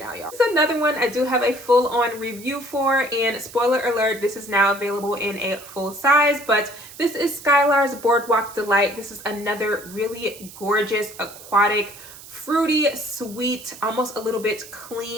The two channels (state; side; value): noise; right; hiss, 17 dB below the sound